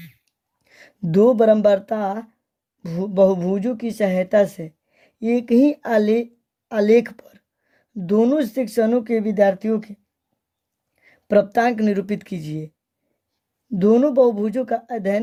दो बराबरता बहुभुजों की सहायता से एक ही आलेख पर दोनों सेक्शनों के विद्यार्थियों के प्राप्तांक निरूपित कीजिए। दोनों बहुभुजों का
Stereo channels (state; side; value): identical; both; correlation 1.00